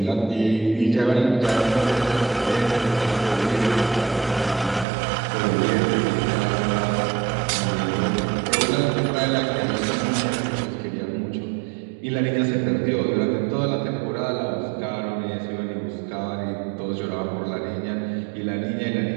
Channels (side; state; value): left; drops out; at 4.9 s